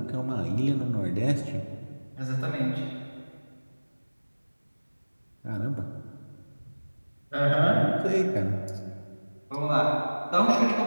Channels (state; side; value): inverted; both; correlation -1.00